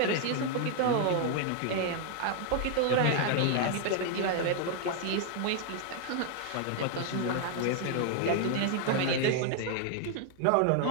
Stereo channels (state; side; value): different; both; correlation 0.00